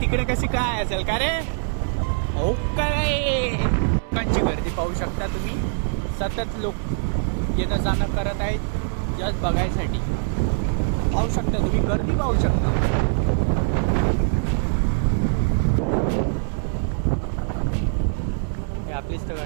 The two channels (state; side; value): silent; left; 63 dB below the other